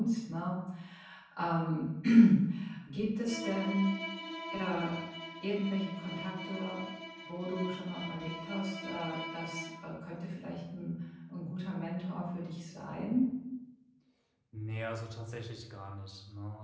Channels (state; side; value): identical; both; correlation 1.00